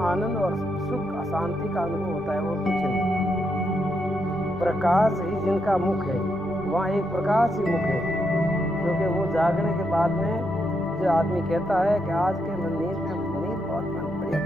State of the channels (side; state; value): both; normal; correlation 0.80